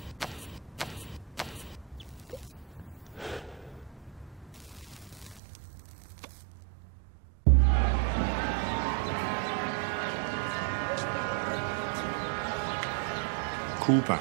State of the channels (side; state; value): left; drops out; at 5.4 s